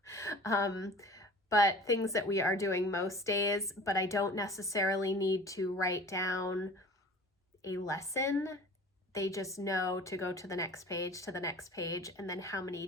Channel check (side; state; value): both; normal; correlation 0.43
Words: But things that we are doing most days, but I don't necessarily need to write down a lesson. They just know to go to the next page, and then how many